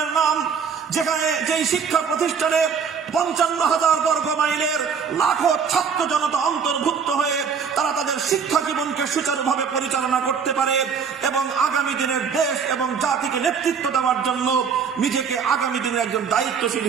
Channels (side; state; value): left; quieter; 6.4 dB